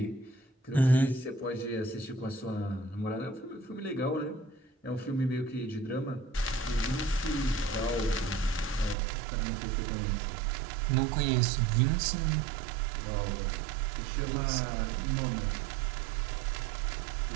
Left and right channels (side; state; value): left; drops out; at 9.0 s